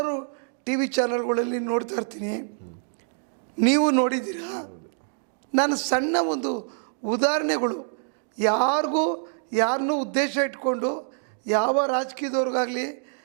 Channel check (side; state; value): left; silent; digital silence